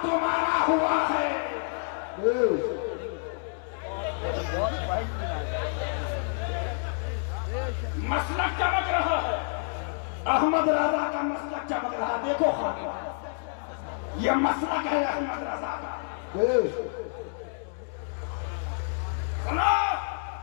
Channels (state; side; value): silent; right; digital silence